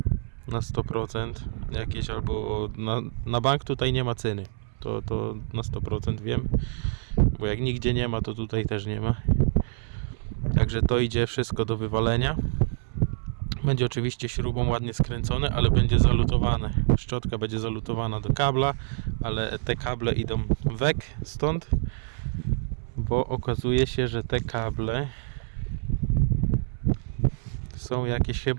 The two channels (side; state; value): left; silent; 60 dB below the other